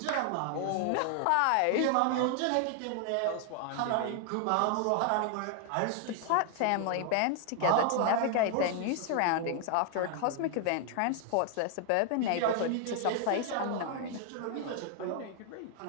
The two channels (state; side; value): different; both; correlation 0.00